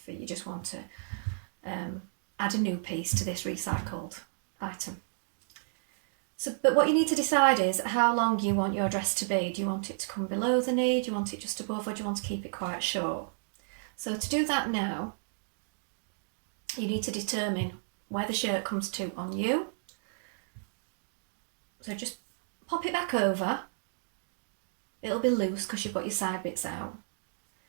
you just want to add a new piece to this recycled item. So, but what you need to decide is how long you want your dress to be. Do you want it to come below the knee? Do you want it just above, or do you want to keep it quite short? So to do that now, you need to determine where the shirt comes to on you. So just pop it back over. It'll be loose because you've got your side bits out.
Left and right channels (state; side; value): silent; left; digital silence